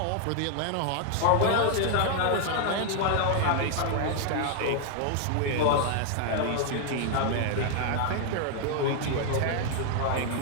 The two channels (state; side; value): different; both; correlation 0.00